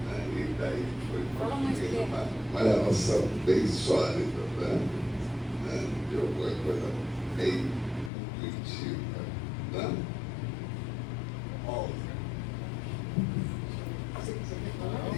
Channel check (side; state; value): right; drops out; at 8.1 s